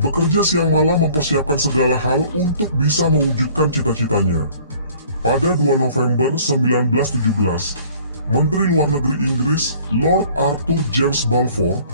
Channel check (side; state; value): both; inverted; correlation -0.53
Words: siang malam mempersiapkan segala hal untuk bisa mewujudkan cita-citanya. Pada 2 November 1917, Menteri Luar Negeri Inggris Lord Arthur James Balfour